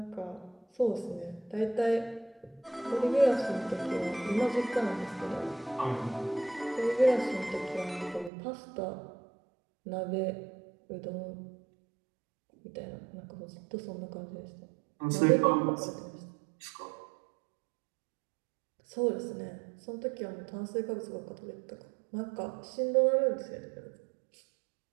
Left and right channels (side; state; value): left; drops out; at 8.3 s